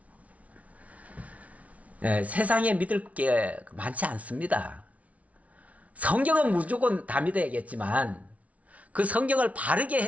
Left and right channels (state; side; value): late; left; 0.067 ms